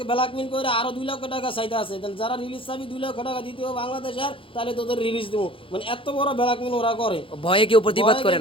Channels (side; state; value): right; late; 0.26 ms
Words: ব্ল্যাকমেল করে আরো 2 লক্ষ টাকা চাইতে আছে, যারা রিলিজ চাবি 2 লক্ষ টাকা দিতে হবে বাংলাদেশের, তাহলে তোদের রিলিজ দেবো। মানে এত বড় ব্ল্যাকমেল ওরা করে, ভয়ে কেউ প্রতিবাদ করে